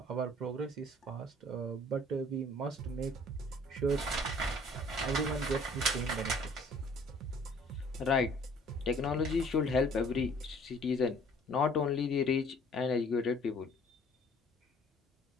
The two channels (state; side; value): normal; both; correlation 0.55